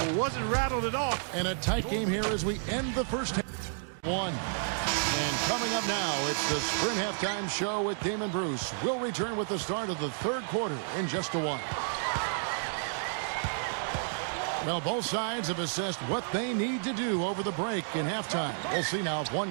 Wasn't rattled at all. And a tight game here as we end the first half. One. And coming up now, it's the Sprint Halftime Show with Damon Bruce. We'll return with the start of the third quarter in just a while. Well, both sides have assessed what they need to do over the break in halftime. We'll see now if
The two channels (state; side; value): silent; left; digital silence